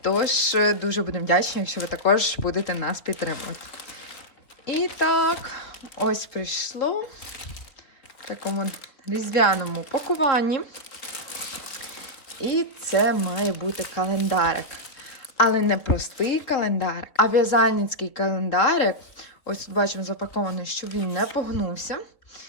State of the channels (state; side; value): late; right; 3.4 ms